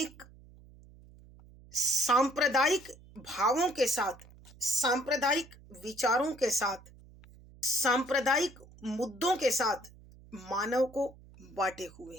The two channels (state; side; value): noise; right; hum, 23 dB below the sound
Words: सांप्रदायिक भावों के साथ, सांप्रदायिक विचारों के साथ, सांप्रदायिक मुद्दों के साथ मानव को बांटे हुए